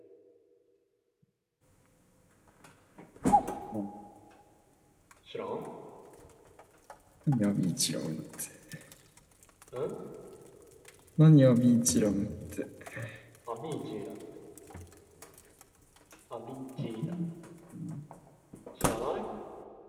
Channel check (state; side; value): identical; both; correlation 1.00